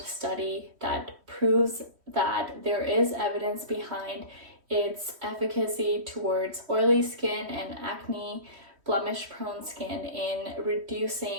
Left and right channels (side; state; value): left; late; 3.1 ms